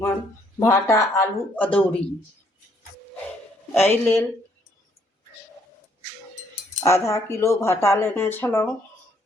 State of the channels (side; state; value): both; normal; correlation 0.67